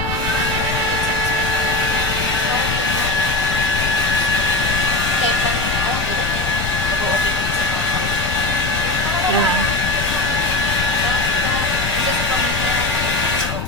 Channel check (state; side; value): noise; left; rumble, 5 dB below the sound